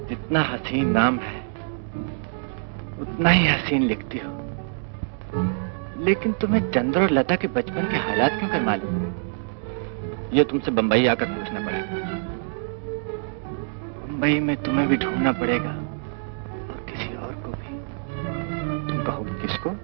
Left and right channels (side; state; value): left; silent; 62 dB below the other